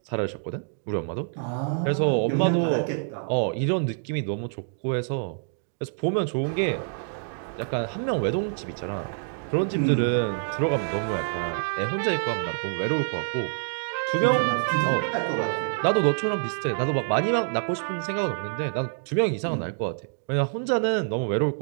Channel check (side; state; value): left; silent; digital silence